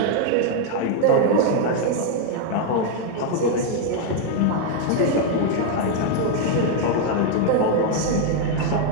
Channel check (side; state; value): both; different; correlation 0.00